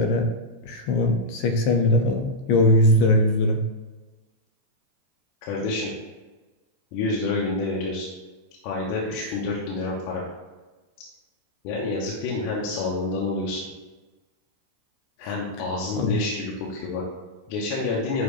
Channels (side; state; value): right; late; 15 ms